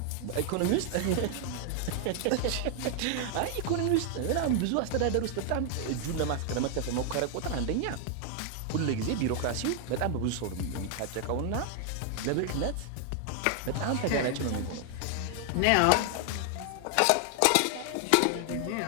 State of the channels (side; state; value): both; different; correlation 0.00